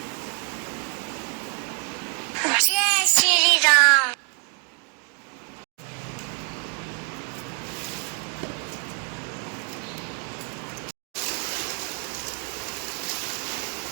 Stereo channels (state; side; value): quieter; left; 39.8 dB